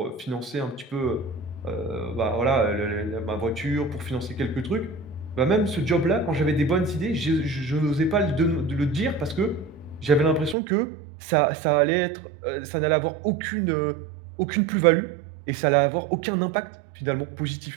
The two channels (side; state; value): left; drops out; at 10.6 s